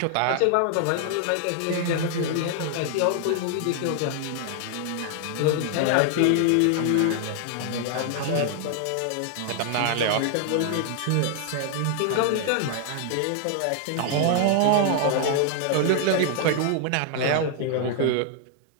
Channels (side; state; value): both; different; correlation 0.00